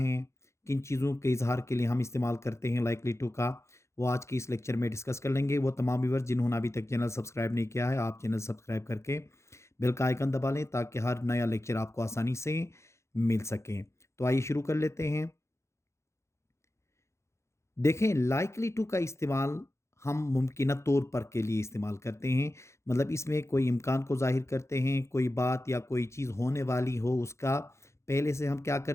किन चीज़ों के इजहार के लिए हम इस्तेमाल करते हैं लाइकली टू का, वो आज की इस लेक्चर में डिस्कस कर लेंगे। वो तमाम व्यूअर्स जिन्होंने अभी तक चैनल सब्सक्राइब नहीं किया है, आप चैनल सब्सक्राइब करके बेल का आइकन दबा लें ताकि हर नया लेक्चर आपको आसानी से मिल सके। तो आइए शुरू कर लेते हैं। देखें, लाइकली टू का इस्तेमाल हम मुमकिन तौर पर के लिए इस्तेमाल करते हैं। मतलब इसमें कोई इम्कान को ज़ाहिर करते हैं, कोई बात या कोई चीज़ होने वाली हो उसका पहले से हम क्या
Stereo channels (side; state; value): right; late; 0.14 ms